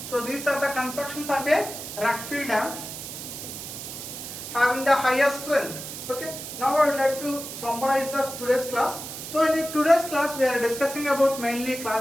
so these are the constructions of a rock fill dams having the highest strength. Okay, now I would like to summarize the today's class. So in today's class we are discussing about mainly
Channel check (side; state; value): right; noise; hiss, 9 dB below the sound